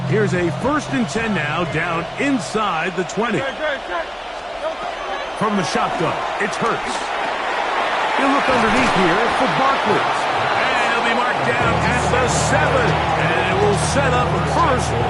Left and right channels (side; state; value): both; identical; correlation 1.00